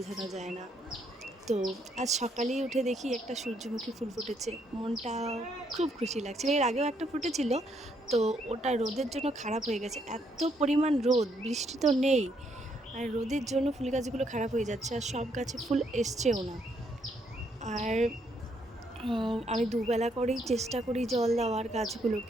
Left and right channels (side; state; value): both; normal; correlation 0.73